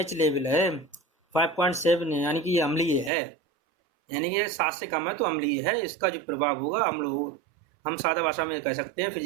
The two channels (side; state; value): left; drops out; at 3.1 s